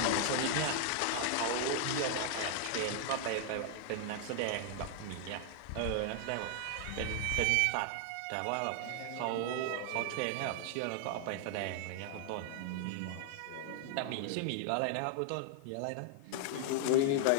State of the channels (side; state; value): both; different; correlation 0.00